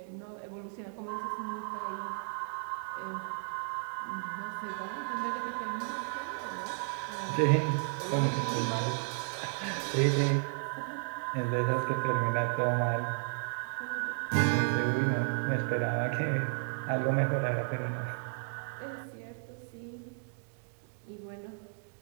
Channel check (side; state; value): left; silent; 55 dB below the other